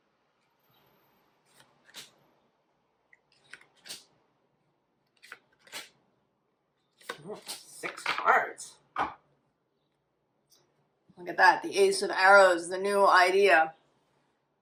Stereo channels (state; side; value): identical; both; correlation 1.00